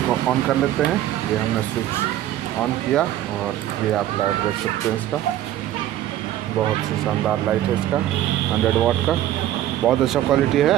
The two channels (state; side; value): quieter; left; 13.0 dB